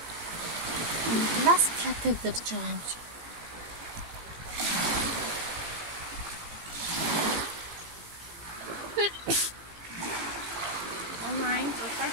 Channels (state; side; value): late; left; 18 ms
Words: Глас катедр ч байгаа юм чи. Онлайн зураг.